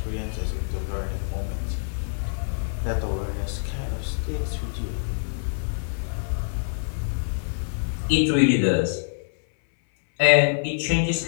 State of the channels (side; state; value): right; silent; 58 dB below the other